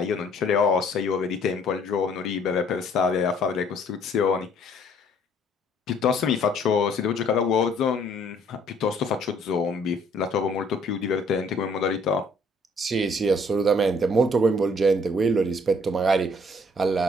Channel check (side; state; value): both; normal; correlation 0.61